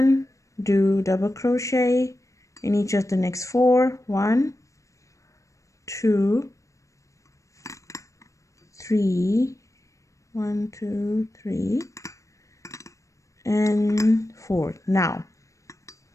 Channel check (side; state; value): right; late; 0.15 ms